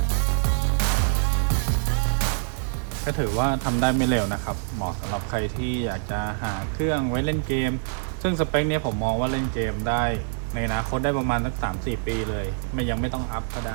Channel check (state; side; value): silent; left; 62 dB below the other